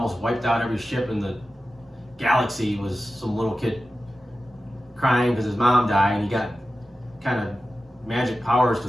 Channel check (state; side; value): normal; both; correlation 0.93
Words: wiped out every ship in the galaxy was some little kid crying because his mom died, and he got kind of magic powers because